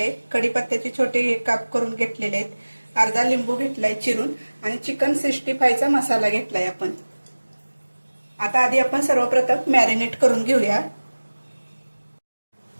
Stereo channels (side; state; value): both; inverted; correlation -1.00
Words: कढीपत्त्याचे छोटे काप करून घेतलेले आहेत, अर्धा लिंबू घेतलाय चिरून आणि चिकन 65 चा मसाला घेतलाय आपण। आता आधी आपण सर्वप्रथम मॅरिनेट करून घेऊया।